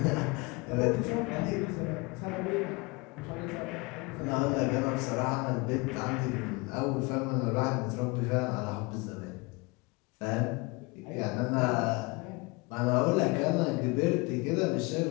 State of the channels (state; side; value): quieter; right; 26.7 dB